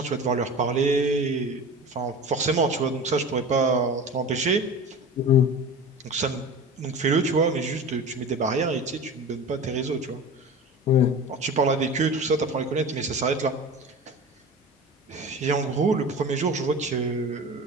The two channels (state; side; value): normal; both; correlation 0.33